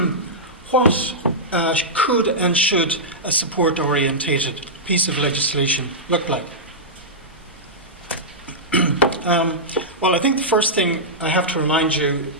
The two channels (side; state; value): both; normal; correlation -0.13